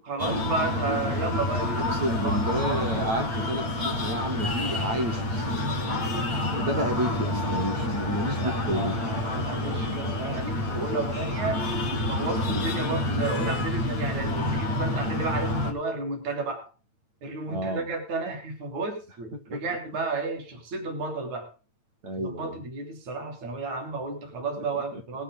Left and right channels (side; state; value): left; late; 8.9 ms